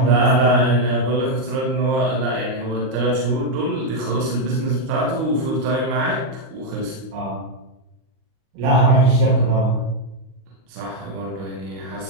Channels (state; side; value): late; left; 38 ms